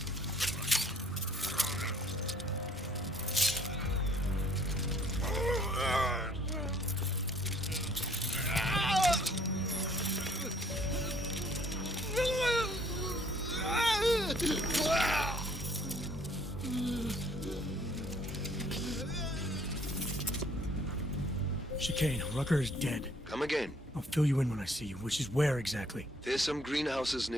Chicane, Rucker is dead. Come again. I'll fill you in when I see you, which is where exactly? There's some greenhouses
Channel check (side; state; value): both; normal; correlation 0.61